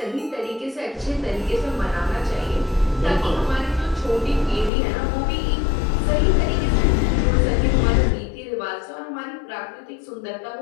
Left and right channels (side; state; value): right; drops out; at 4.7 s